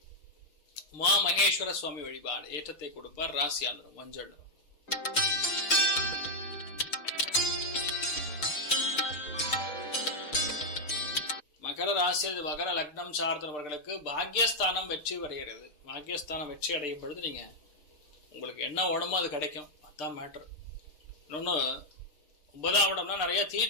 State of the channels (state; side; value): late; right; 6.3 ms